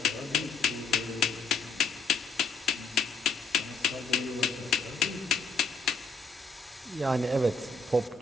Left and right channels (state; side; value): quieter; right; 4.0 dB